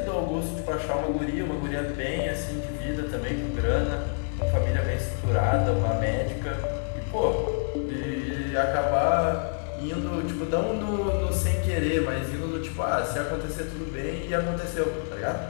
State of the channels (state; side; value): silent; right; digital silence